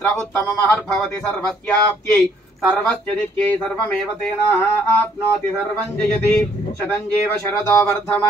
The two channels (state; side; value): normal; both; correlation 0.65